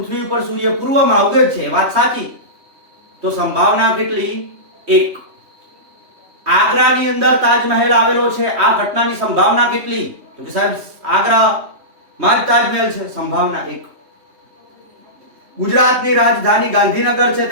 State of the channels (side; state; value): left; late; 3.2 ms